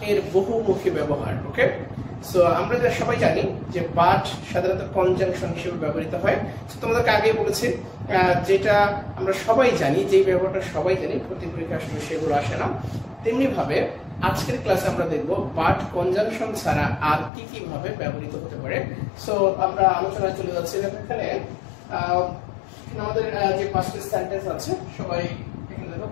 এর বহুমুখী ব্যবহার। ওকে, সো আমরা সবাই জানি যে বাট সাধারণত কনজাংশন হিসেবে ব্যবহৃত হয়। তোমাদেরকে আগেই বলেছি যেটা আমরা সবাই জানি, যেই ব্যবহারটা সবাই জানি, ভর্তি পরীক্ষা আসলে সেগুলো আসে না। তেমনি ভাবে আজকের ক্লাসে আমরা দেখব বাট কনজাংশন ছাড়া আর কি কি ভাবে ব্যবহৃত হতে পারে। সো আমরা আলোচনায় চলে যাচ্ছি। এখানে আমাদের যে পাঁচটি সেন্টেন্স আছে সবাই এখানে দেখো,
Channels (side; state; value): right; drops out; at 17.3 s